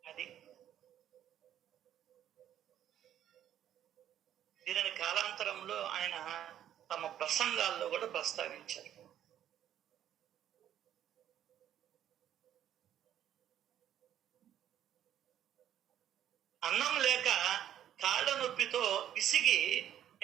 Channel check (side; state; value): left; quieter; 10.9 dB